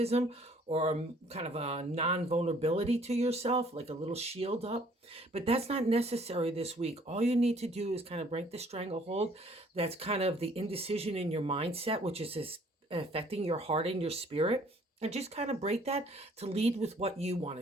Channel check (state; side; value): normal; both; correlation 0.59